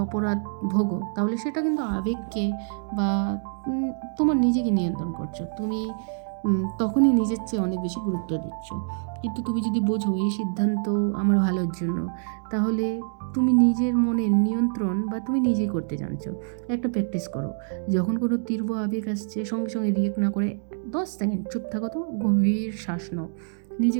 অপরাধ ভোগো, তাহলে সেটা কিন্তু আবেগকে বা তোমার নিজেকে নিয়ন্ত্রণ করছো। তুমি তখনই নিজের চেয়ে অনেক বেশি গুরুত্ব দিচ্ছ। কিন্তু তুমি যদি বোঝো এই সিদ্ধান্ত আমার ভালোর জন্য, তাহলে তুমি নিজের মনের নিয়ন্ত্রণ বা তুমি নিজেই করতে জানছো। একটা প্র্যাকটিস করো, যখন কোনো তীব্র আবেগ আসছে সঙ্গে সঙ্গে রিয়েক্ট না করে 10 সেকেন্ড চুপ থাকো, তো গভীর শ্বাস নাও,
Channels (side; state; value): left; silent; digital silence